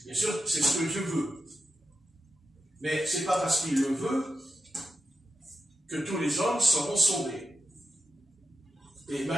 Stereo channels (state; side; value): normal; both; correlation 0.89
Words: Bien sûr, c'est ce que Dieu veut. Mais ce n'est pas parce qu'il le veut que tous les hommes seront sauvés. Et